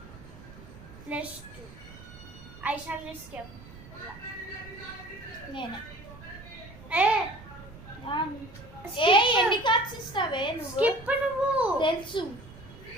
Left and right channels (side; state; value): right; noise; rumble, 18 dB below the sound